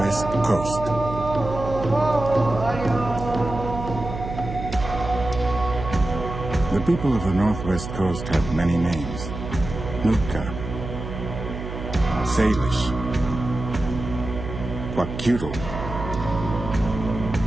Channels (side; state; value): right; noise; hum, 8 dB below the sound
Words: Coast. The people of the Northwest Coast have many names: Nootka, Salish, Kwakiutl,